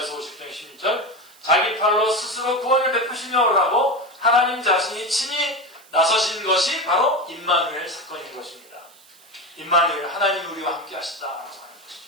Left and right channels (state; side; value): noise; right; hiss, 26 dB below the sound